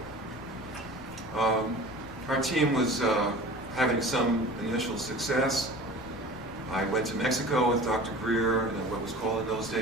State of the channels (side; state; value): left; noise; rumble, 20 dB below the sound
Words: our team was having some initial success. I went to Mexico with Dr. Greer and what was called in those